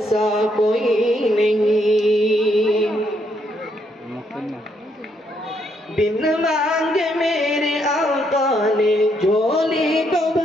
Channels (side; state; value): both; normal; correlation 0.74